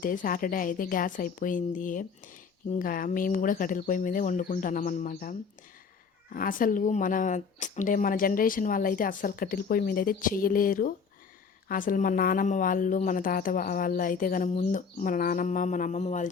సాటర్డే అయితే గ్యాస్ అయిపోయింది. ఇంకా మేము కూడా కట్టెల పొయ్యి మీదే వండుకుంటున్నాం అనమాట. అసలు మన జనరేషన్ వాళ్ళు అయితే అస్సలు కట్టెల పొయ్యి మీద అయితే చేయలేరు. అసలు మన నానమ్మ వాళ్ళు, మన తాత వాళ్ళు అయితే కనుక ముందు మన నానమ్మ, మన అమ్మమ్మ వాళ్ళ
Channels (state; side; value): quieter; right; 5.7 dB